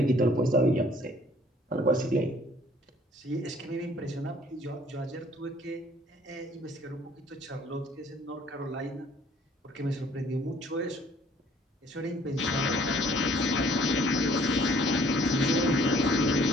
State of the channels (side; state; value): both; normal; correlation 0.58